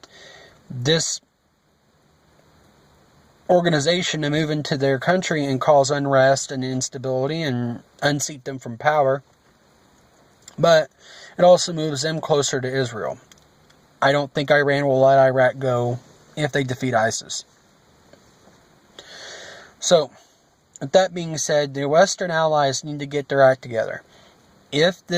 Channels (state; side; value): identical; both; correlation 1.00